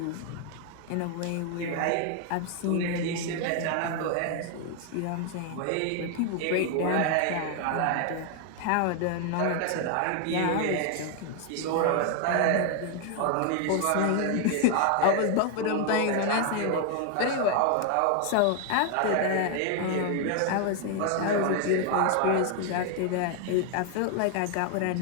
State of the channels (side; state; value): both; different; correlation 0.00